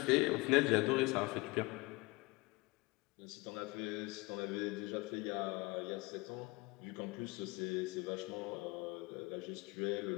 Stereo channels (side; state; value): right; quieter; 24.0 dB